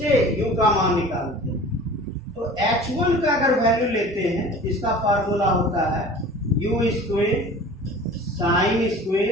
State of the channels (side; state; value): both; normal; correlation 0.42